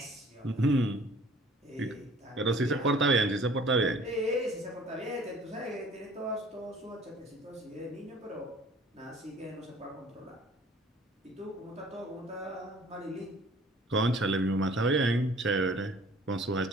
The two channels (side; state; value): both; normal; correlation 0.52